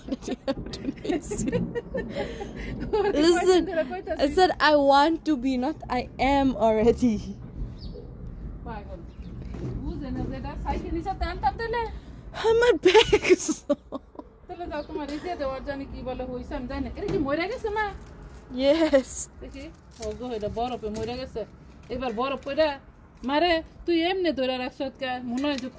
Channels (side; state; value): both; identical; correlation 1.00